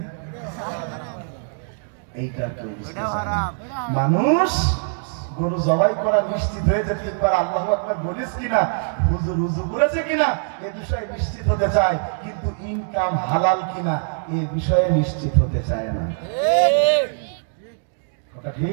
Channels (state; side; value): silent; left; digital silence